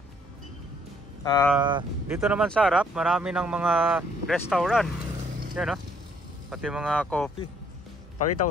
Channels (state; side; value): normal; both; correlation 0.65